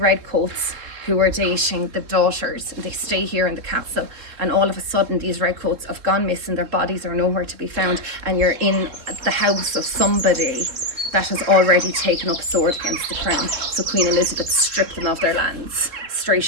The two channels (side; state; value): left; late; 3.7 ms